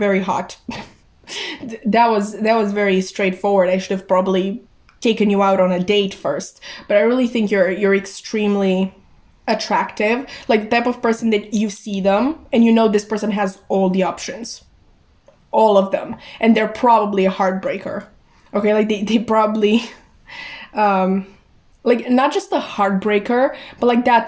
hot. That was very straightforward. I should have probably taken you out on a date first. But I really think you're extremely attractive. Like the type of person that you see them and you know this person has all the options. All of them. And they're probably a heartbreaker. Okay, like they probably like not just a heartbreaker, but like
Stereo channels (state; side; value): identical; both; correlation 1.00